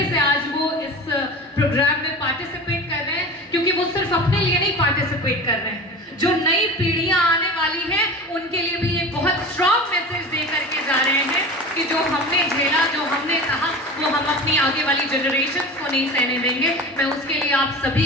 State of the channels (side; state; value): both; normal; correlation 0.33